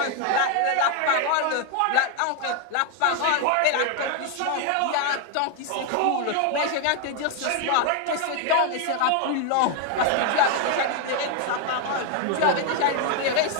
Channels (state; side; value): different; both; correlation 0.00